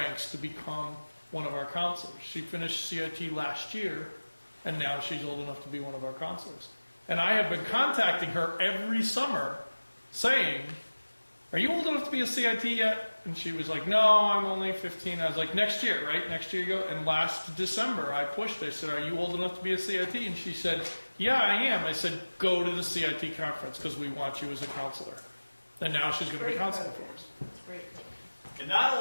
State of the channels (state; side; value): inverted; both; correlation -1.00